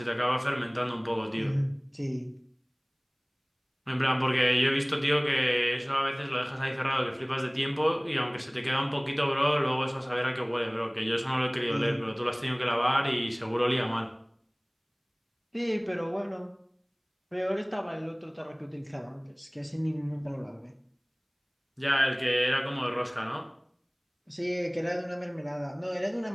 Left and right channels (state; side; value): identical; both; correlation 1.00